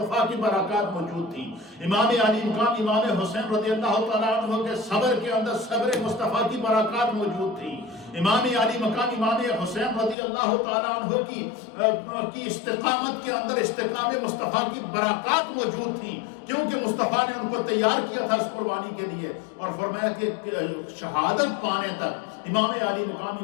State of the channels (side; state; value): right; drops out; at 10.2 s